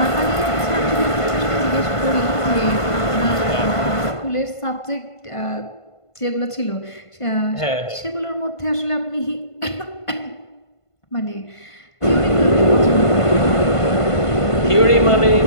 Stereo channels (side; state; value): right; late; 1.5 ms